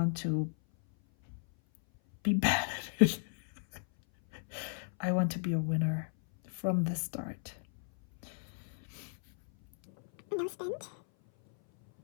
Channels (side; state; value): right; silent; 55 dB below the other